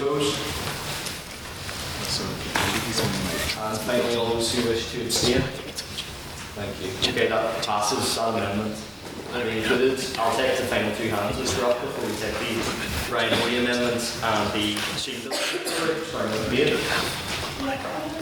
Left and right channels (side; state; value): both; identical; correlation 1.00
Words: And finally, all those who wish to abstain. Thank you. Okay, that passes that amendment. And we included, I'll take the final two hands, Mr. Rock, before we take the right-of-way amendment and the machine bill. Sorry, no debate.